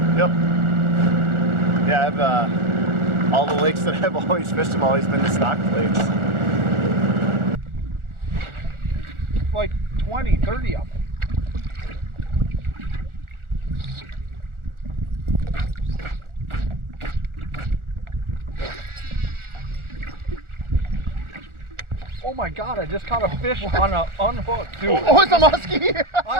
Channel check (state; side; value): late; left; 1.4 ms